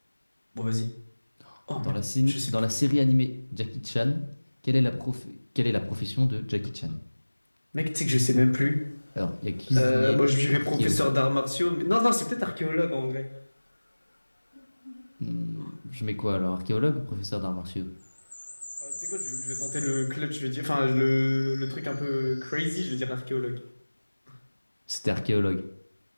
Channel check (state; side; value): inverted; both; correlation -1.00